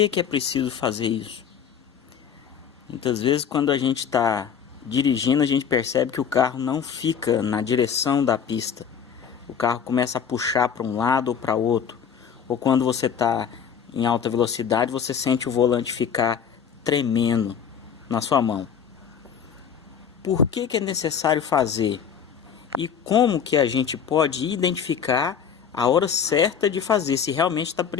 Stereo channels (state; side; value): quieter; right; 7.6 dB